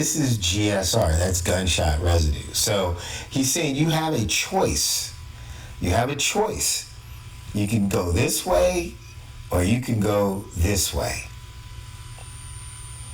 is GSR, that's gunshot residue. So he's saying you have a choice. You have a choice. You can go this way or you can go this way.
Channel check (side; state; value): both; identical; correlation 1.00